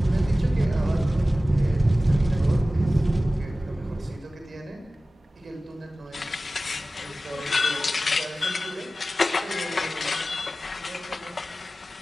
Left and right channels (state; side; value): normal; both; correlation 0.96